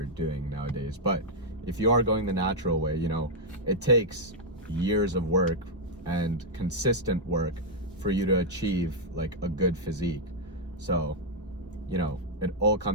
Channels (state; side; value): normal; both; correlation -0.04